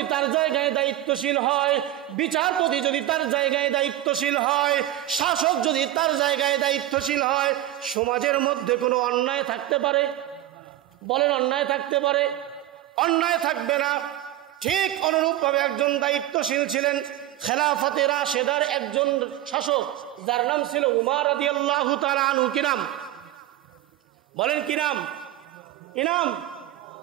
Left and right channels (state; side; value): quieter; left; 14.0 dB